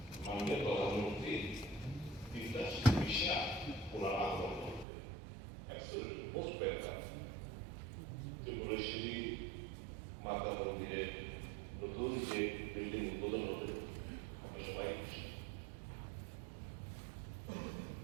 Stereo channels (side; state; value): left; drops out; at 4.9 s